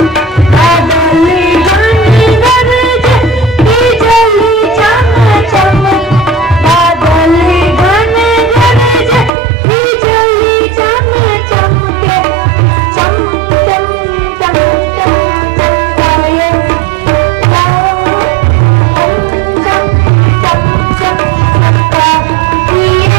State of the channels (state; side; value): drops out; left; at 9.3 s